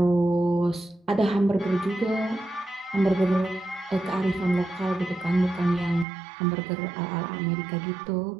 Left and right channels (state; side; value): drops out; left; at 6.1 s